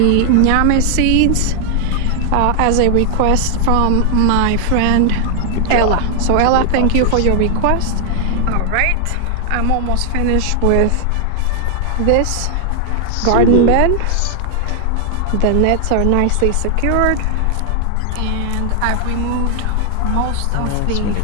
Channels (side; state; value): both; different; correlation 0.00